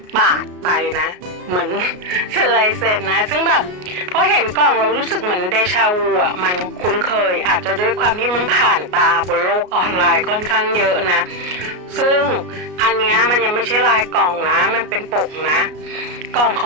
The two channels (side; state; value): left; late; 33 ms